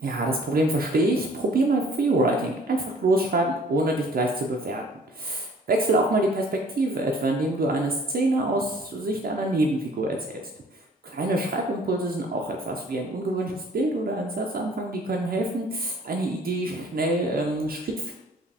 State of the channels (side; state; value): both; normal; correlation 0.54